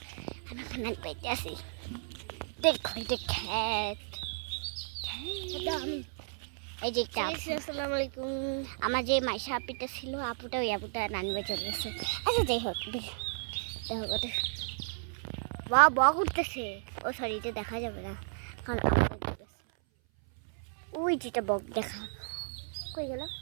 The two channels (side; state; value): left; silent; 55 dB below the other